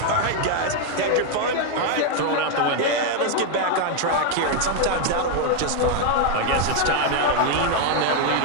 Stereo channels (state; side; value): different; both; correlation 0.01